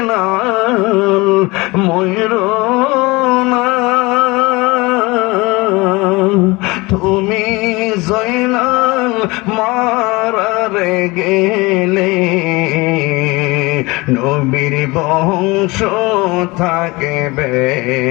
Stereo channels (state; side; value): quieter; right; 23.5 dB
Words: ময়ূরো না, তুমি জয়নাল মারারে গেলে নবীর বংশ থাকবে